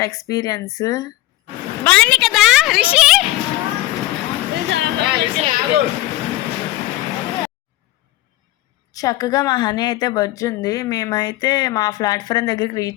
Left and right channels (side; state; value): right; quieter; 16.7 dB